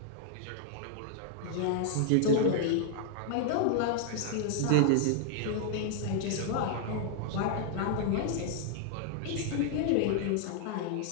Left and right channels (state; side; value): different; both; correlation 0.00